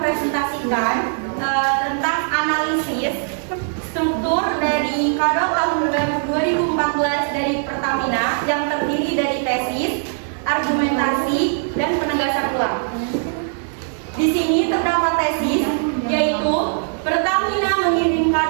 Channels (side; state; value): left; silent; 66 dB below the other